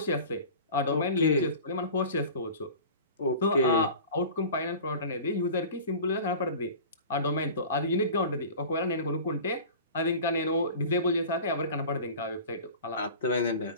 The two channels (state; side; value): inverted; both; correlation -0.38